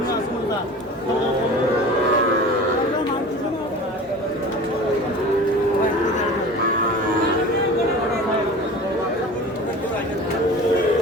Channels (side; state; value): both; normal; correlation 0.38